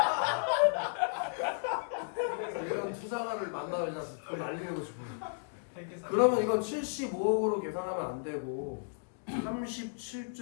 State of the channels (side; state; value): right; silent; digital silence